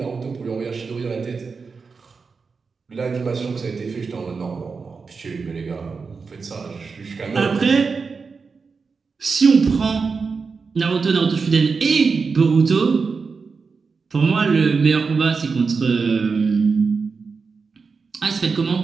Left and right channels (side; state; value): left; quieter; 4.9 dB